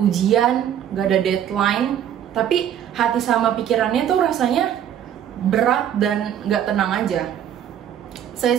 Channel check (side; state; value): left; quieter; 9.9 dB